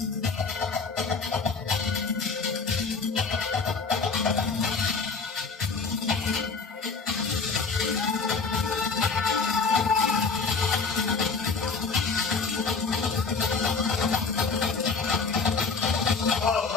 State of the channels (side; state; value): right; quieter; 4.7 dB